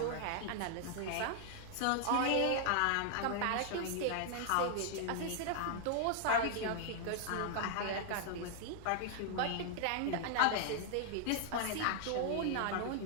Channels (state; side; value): different; both; correlation -0.01